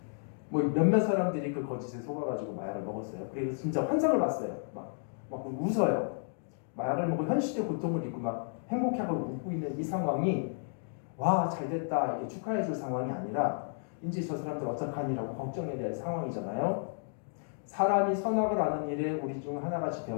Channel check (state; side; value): silent; right; digital silence